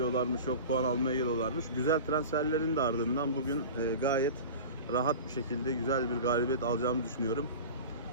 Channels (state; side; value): inverted; both; correlation -0.33